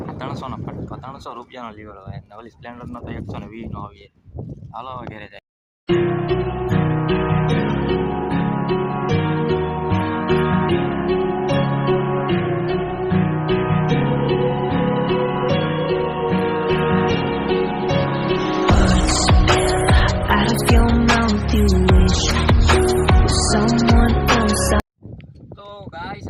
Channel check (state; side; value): identical; both; correlation 1.00